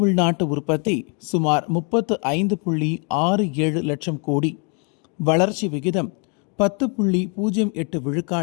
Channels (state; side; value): quieter; right; 36.8 dB